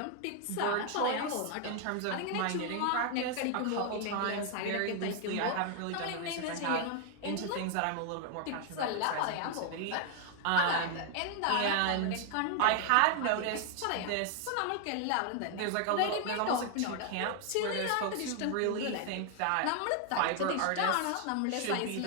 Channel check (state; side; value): different; both; correlation 0.00